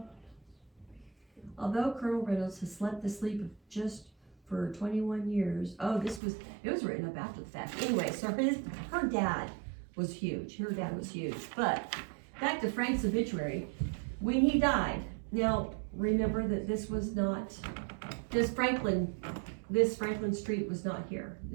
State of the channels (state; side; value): drops out; left; at 6.2 s